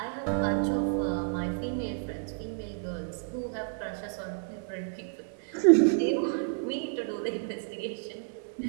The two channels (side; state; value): left; silent; 58 dB below the other